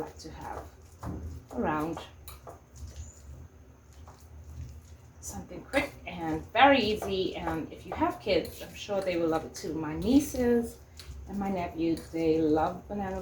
to have around. Something quick and very easy, and if you have kids, I'm sure they will love it too. My nieces and my nephews, they love banana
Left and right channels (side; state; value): both; identical; correlation 1.00